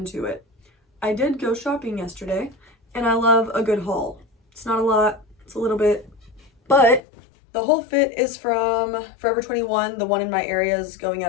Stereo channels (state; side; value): drops out; right; at 7.0 s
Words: it, I did go shopping yesterday and I love a good haul. It's not a lot, it's a little bit, but the whole fit is from Forever 21. The one in my area is going